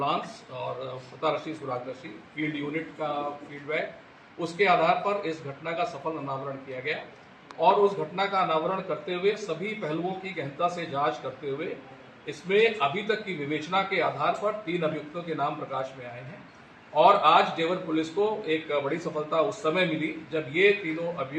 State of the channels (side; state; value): both; identical; correlation 1.00